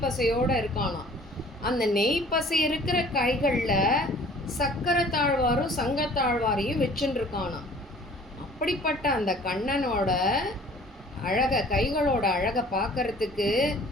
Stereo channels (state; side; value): normal; both; correlation 0.51